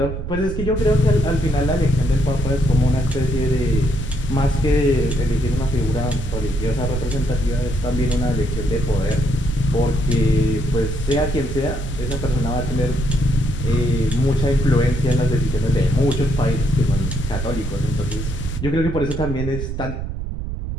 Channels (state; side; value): noise; right; rumble, 5 dB below the sound